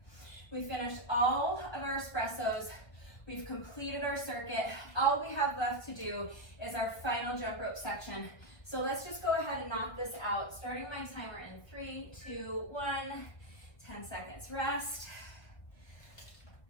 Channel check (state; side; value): late; right; 1.6 ms